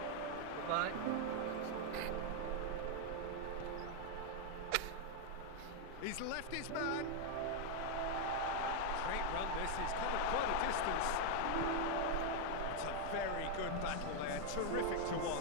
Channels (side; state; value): both; different; correlation 0.00